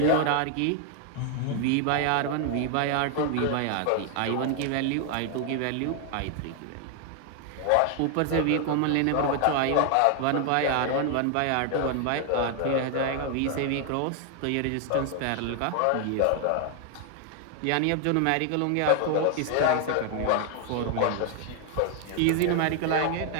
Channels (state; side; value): different; both; correlation 0.00